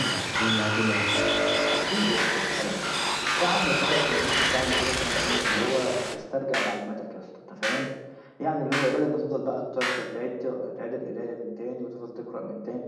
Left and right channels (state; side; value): identical; both; correlation 1.00